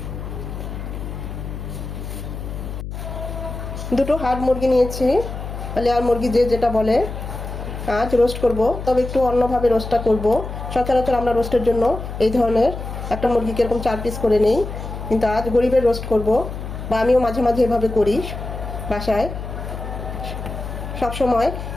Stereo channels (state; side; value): noise; left; hum, 8 dB below the sound